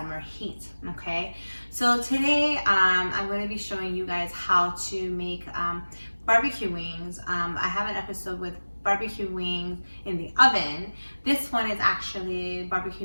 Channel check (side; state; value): both; inverted; correlation -1.00